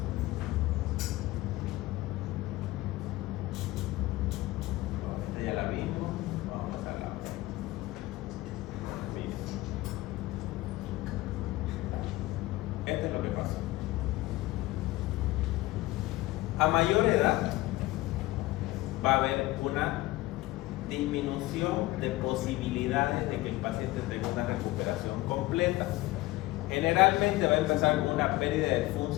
Esta ya la vimos, vamos a pasar a la otra. Miren. Esto es lo que pasa. A mayor edad va a haber una disminución de posibilidades de que el paciente tenga una recuperación completa. Generalmente va a empezar con una pérdida de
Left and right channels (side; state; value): right; quieter; 18.7 dB